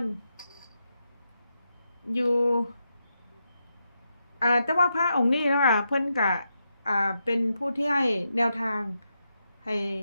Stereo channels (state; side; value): inverted; both; correlation -0.85